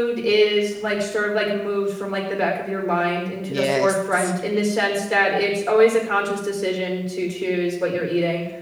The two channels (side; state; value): both; identical; correlation 1.00